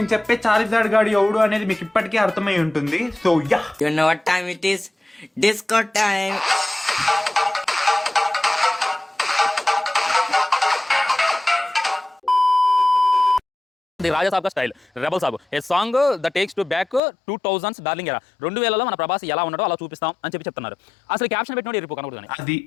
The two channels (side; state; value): right; drops out; at 17.0 s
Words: చెప్పే చార్జార్డ్ గాడు ఎవడు అనేది మీకు ఇప్పటికే అర్థమై ఉంటుంది. So ya, You know what time it is? Disco time. The Raja Saab కా style rebel Saab a song the takes to back 2000s darling era 2000లో మన ప్రభాస్ ఎలా ఉన్నాడో అలా చూపిస్తాం అని చెప్తున్నారు. అసలు క్యాప్షన్ పెట్టినోడు ఇరుపు కనబడుతుంది. అది